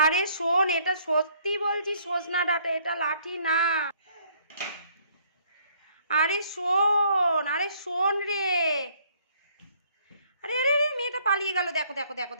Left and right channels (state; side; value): inverted; both; correlation -0.64